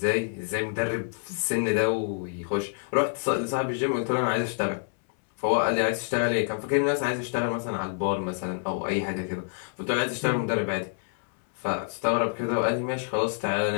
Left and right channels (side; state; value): right; silent; 60 dB below the other